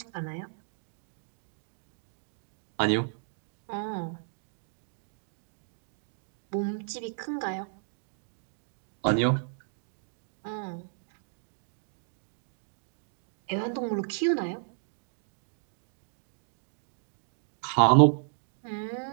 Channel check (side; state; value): left; silent; digital silence